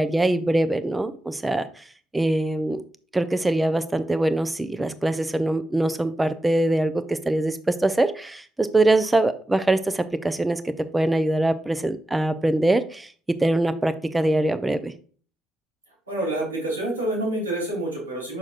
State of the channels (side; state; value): both; normal; correlation 0.90